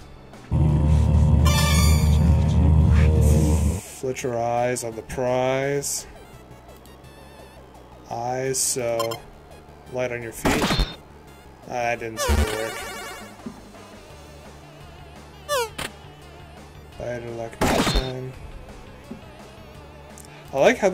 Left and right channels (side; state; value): both; identical; correlation 1.00